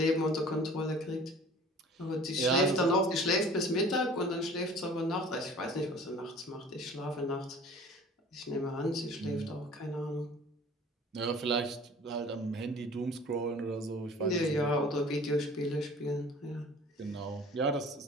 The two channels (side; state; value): both; normal; correlation 0.46